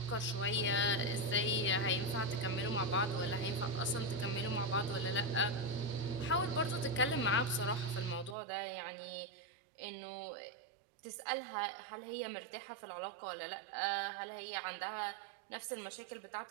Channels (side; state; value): left; drops out; at 8.3 s